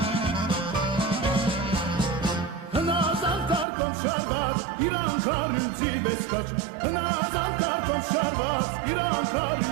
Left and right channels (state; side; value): drops out; left; at 3.7 s